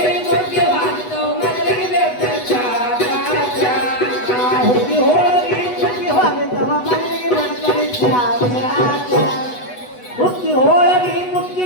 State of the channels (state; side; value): late; right; 8.1 ms